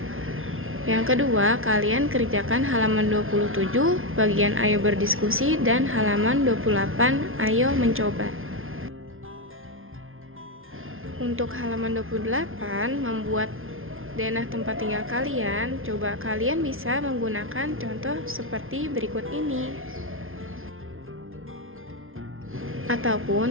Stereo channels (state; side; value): late; left; 0.60 ms